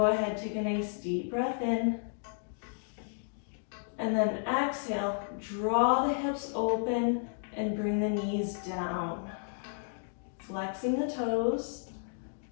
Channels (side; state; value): right; silent; digital silence